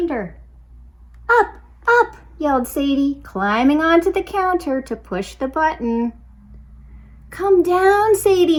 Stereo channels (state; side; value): identical; both; correlation 1.00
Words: "Up, up," yelled Sadie, climbing onto the counter to push the button. "Come down,